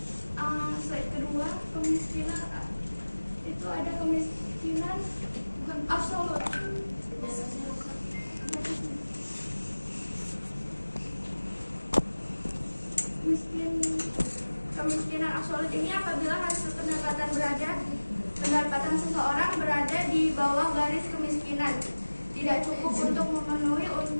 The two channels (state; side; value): inverted; both; correlation -1.00